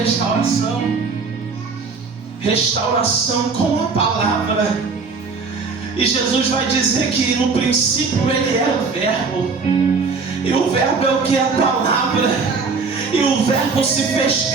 Restauração com a palavra. E Jesus vai dizer que no princípio Ele era o Verbo. E o Verbo é o que? A palavra. E o Verbo se fez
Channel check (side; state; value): left; quieter; 4.6 dB